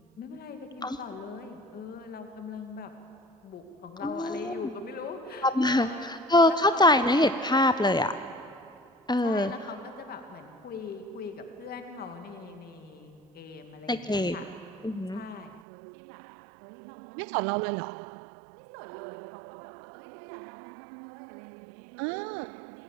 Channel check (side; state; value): left; drops out; at 15.6 s